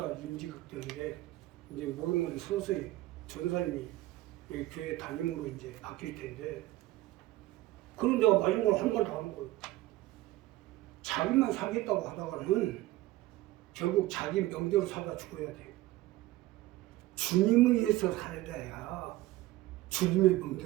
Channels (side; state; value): left; quieter; 17.1 dB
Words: 임직학 때문에 이제 모든 서서히 전사님이 여기 교회 담임으로 이제 바뀔 텐데 그런 데가 마지막으로 한 번 더 하는 거예요. 자기만 살겠다고 하다가는 결국 자기 명대로 살다 죽어야 돼요. 주님을 위해서 살아야 주님의